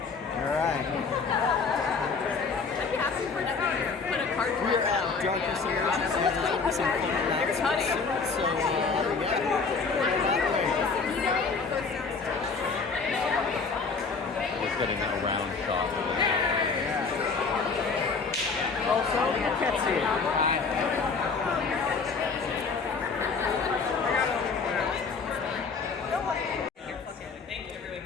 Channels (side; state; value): right; quieter; 4.8 dB